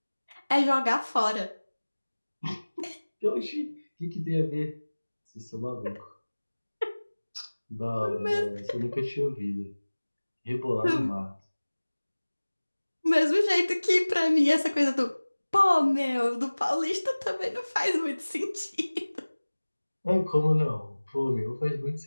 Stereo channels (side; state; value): both; inverted; correlation -1.00